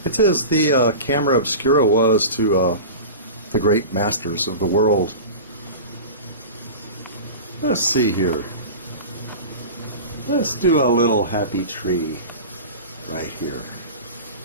It's as the camera obscura was to the great masters of the world. Let's see here. Let's do a little happy tree right here.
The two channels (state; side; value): inverted; both; correlation -0.32